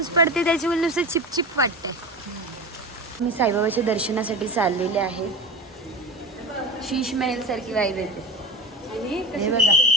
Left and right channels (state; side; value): normal; both; correlation 0.27